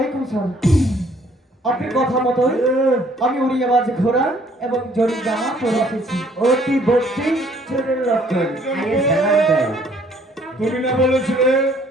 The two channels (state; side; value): normal; both; correlation 0.61